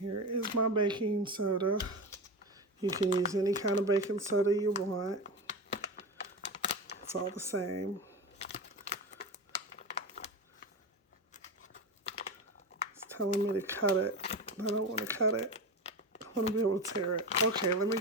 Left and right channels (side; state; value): both; normal; correlation 0.23